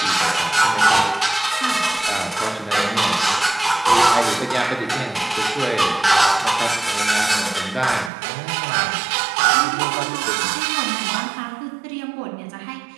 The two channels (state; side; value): drops out; left; at 8.1 s